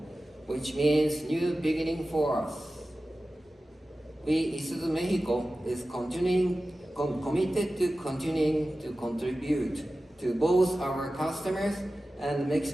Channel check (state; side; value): normal; both; correlation 0.95